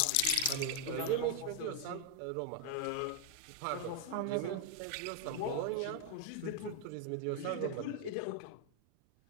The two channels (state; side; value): different; both; correlation 0.01